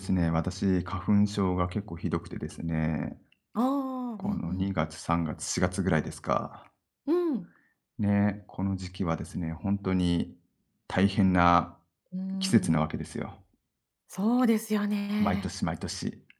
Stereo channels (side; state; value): both; identical; correlation 1.00